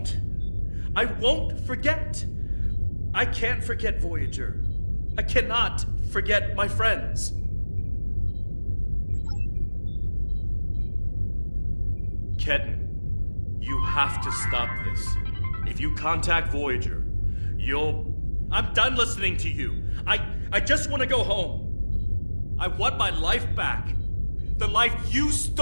forget. I can't forget Voyager. I cannot forget my friends. Ketan, you have to stop this. If you contact Voyager, I'm done listening to you. I just want to go home. I want my life back. The life you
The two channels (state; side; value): inverted; both; correlation -1.00